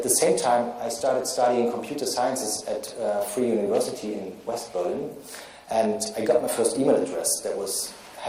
the same time, I started studying computer sciences at Free University in West Berlin. And I got my first email address. That was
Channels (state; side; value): identical; both; correlation 1.00